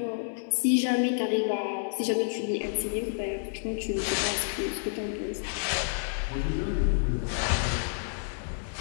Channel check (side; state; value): right; silent; digital silence